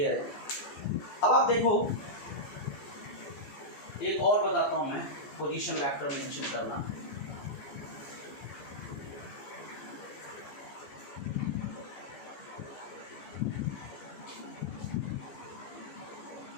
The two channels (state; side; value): late; right; 14 ms